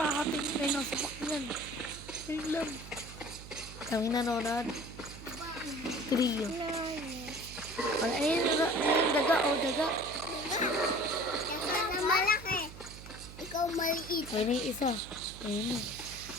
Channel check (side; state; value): right; noise; hum, 14 dB below the sound